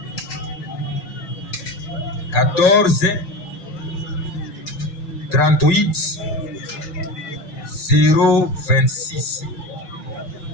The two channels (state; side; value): late; right; 6.7 ms